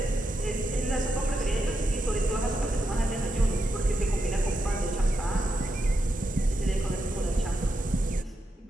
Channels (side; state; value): both; normal; correlation 0.85